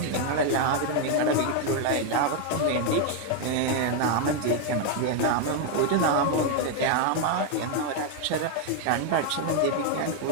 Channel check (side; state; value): both; different; correlation 0.01